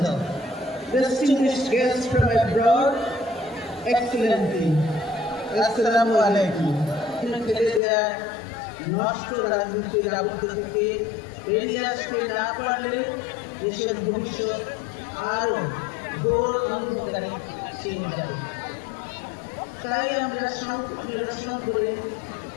distinguished guests from abroad, Excellency, Assalamu alaikum. নষ্ট রাজনীতির আবদ্ধ থেকে বেরিয়ে আসতে না পারলে দেশের ভবিষ্যৎ আরো ঘোর অন্ধকারে ছিনে যাবে। তাই আমরা সংকট নিরসন করে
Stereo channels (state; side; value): drops out; right; at 7.8 s